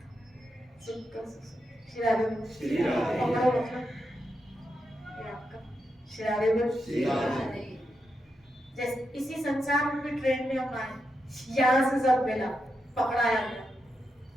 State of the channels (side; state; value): both; normal; correlation 0.86